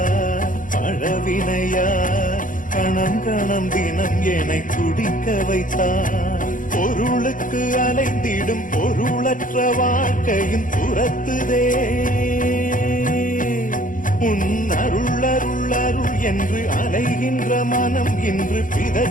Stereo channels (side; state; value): right; late; 0.39 ms